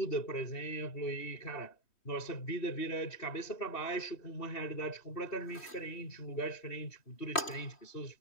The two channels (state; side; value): late; right; 3.1 ms